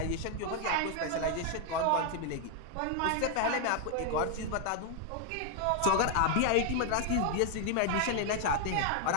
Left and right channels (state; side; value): different; both; correlation 0.00